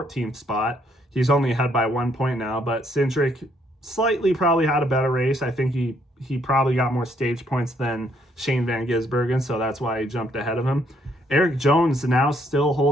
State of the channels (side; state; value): both; normal; correlation 0.69